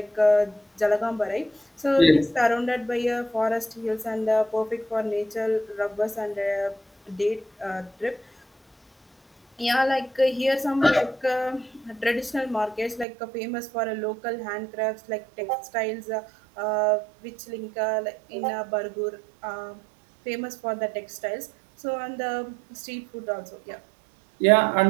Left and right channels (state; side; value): drops out; left; at 13.1 s